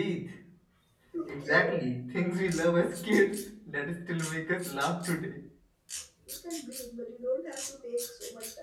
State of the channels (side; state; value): both; identical; correlation 1.00